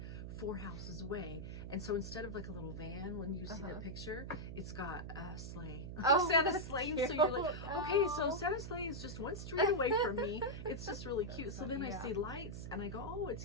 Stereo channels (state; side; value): noise; right; hum, 7 dB below the sound